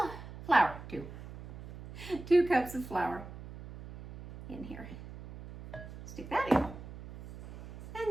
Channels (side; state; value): right; noise; hum, 12 dB below the sound